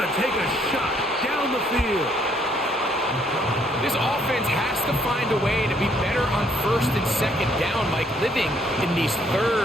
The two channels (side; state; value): both; normal; correlation 0.67